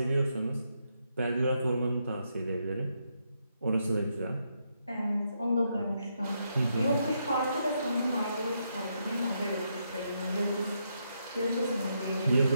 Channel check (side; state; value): both; inverted; correlation -0.80